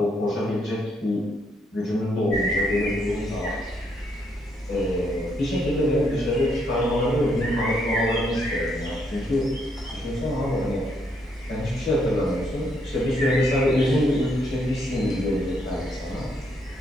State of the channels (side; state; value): both; normal; correlation 0.73